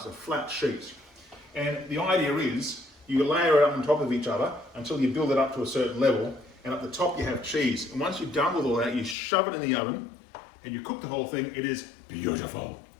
flat sheets. And the idea is you layer it up on top of each other until you build it up to a certain level, and at the top you have cheese. And once you're done with all that, you shove it in the oven and you cook the whole thing. It is beautiful.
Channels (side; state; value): right; drops out; at 9.2 s